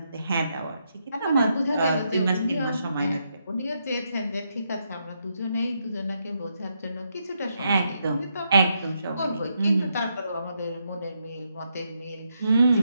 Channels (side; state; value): both; inverted; correlation -0.80